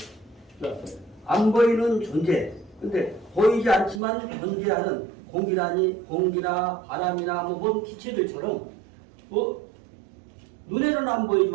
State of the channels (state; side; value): drops out; left; at 4.0 s